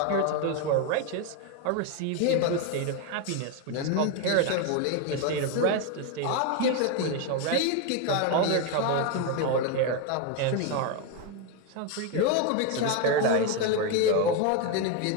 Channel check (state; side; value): different; both; correlation 0.02